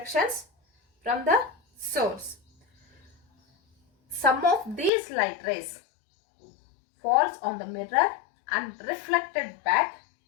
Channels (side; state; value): right; drops out; at 4.9 s